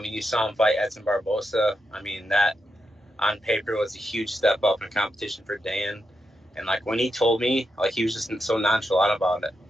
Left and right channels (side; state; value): both; normal; correlation 0.85